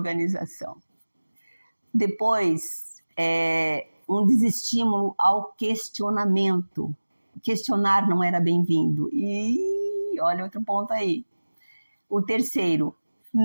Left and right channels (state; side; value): inverted; both; correlation -1.00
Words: Depois, um desestímulo ao questionamento. Questionar não era bem-vindo. E olha outro ponto aí. O terceiro,